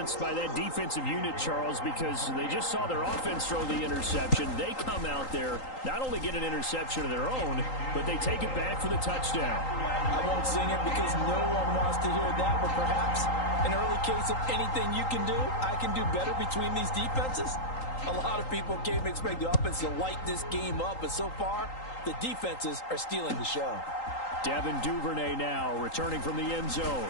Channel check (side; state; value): right; late; 3.8 ms